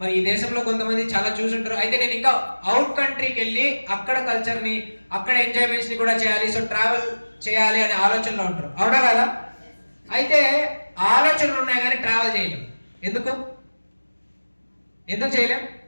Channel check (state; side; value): inverted; both; correlation -1.00